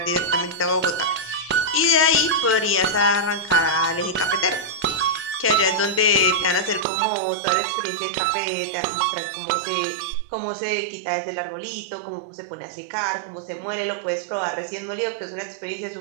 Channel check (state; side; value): drops out; left; at 6.9 s